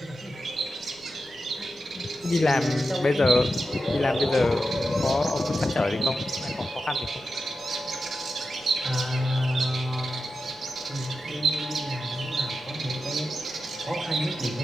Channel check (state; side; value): noise; right; rumble, 28 dB below the sound